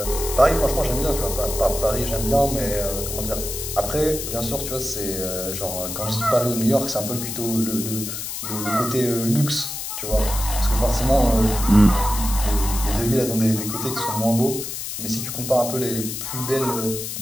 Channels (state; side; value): noise; left; hiss, 6 dB below the sound